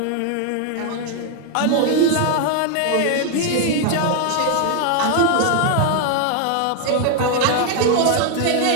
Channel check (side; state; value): both; different; correlation 0.00